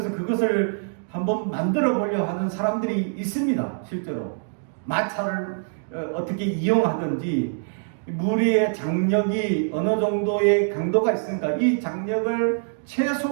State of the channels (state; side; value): silent; left; digital silence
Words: 그것을 한번 만들어 보려 하는 사람들이 있습니다. 실제로 마차를 어떻게 이용하든지 무리의 장력이 어느 정도의 강도가 있으니까 이 장력을